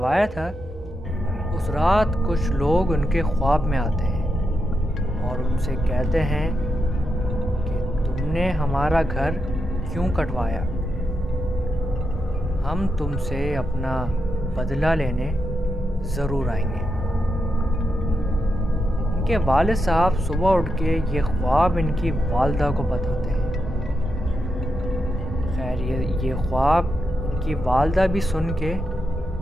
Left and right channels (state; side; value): normal; both; correlation 0.85